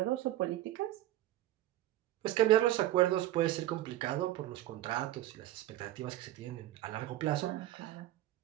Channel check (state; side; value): quieter; left; 14.5 dB